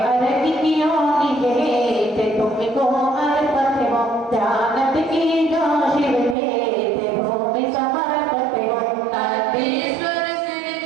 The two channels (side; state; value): left; drops out; at 6.4 s